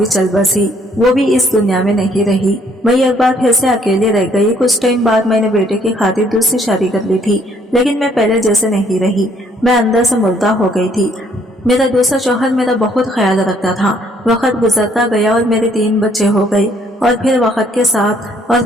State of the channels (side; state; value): both; normal; correlation 0.65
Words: चल बसी। वो भी इस दुनिया में नहीं रही। मैं एक बार फिर से अकेले रह गई। कुछ टाइम बाद मैंने बेटे की खातिर दूसरी शादी कर ली थी, लेकिन मैं पहले जैसे नहीं रही। मैं अंदर से मुर्दा हो गई थी। मेरा दूसरा शौहर मेरा बहुत ख्याल रखता था। वक्त गुजरता गया और मेरे 3 बच्चे हो गए और फिर वक्त